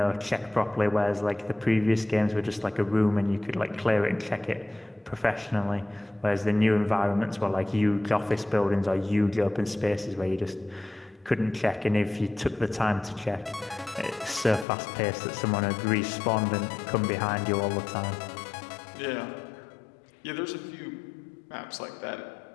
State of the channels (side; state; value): right; drops out; at 14.7 s